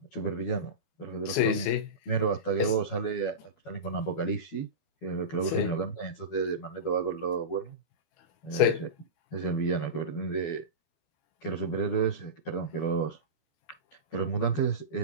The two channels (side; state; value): right; late; 12 ms